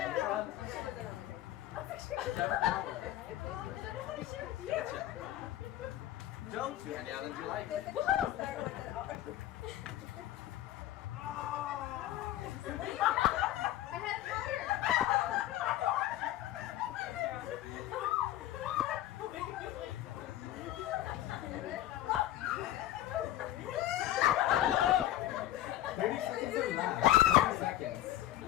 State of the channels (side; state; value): right; quieter; 13.8 dB